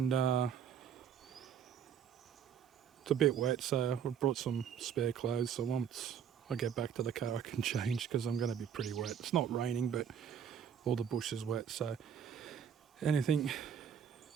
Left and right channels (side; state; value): left; quieter; 8.2 dB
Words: it's a bit wet, so I brought some spare clothes, so once I get back to the car I can change because I'm going to be pretty wet. It's not raining, but all the bush is wet, so anything